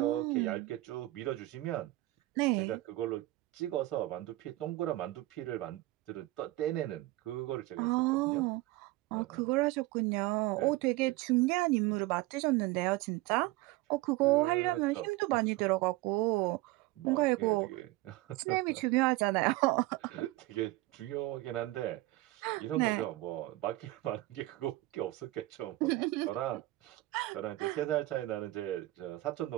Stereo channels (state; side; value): quieter; left; 18.7 dB